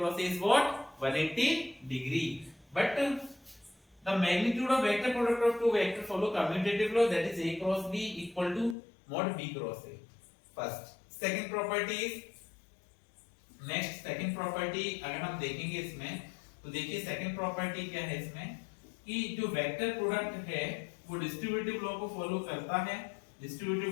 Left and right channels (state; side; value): drops out; right; at 8.8 s